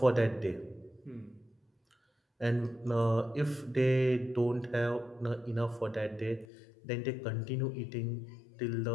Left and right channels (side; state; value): right; drops out; at 6.5 s